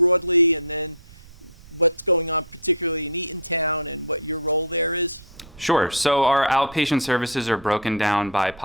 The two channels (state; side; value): noise; right; rumble, 22 dB below the sound